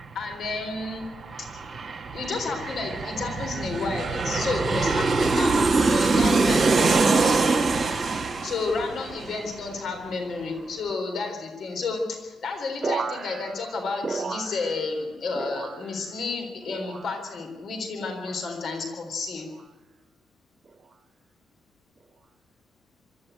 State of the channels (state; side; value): normal; both; correlation 0.84